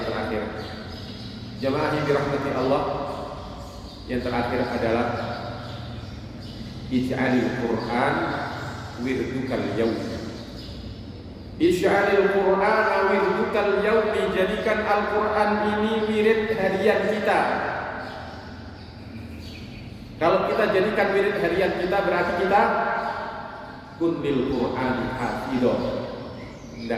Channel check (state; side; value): identical; both; correlation 1.00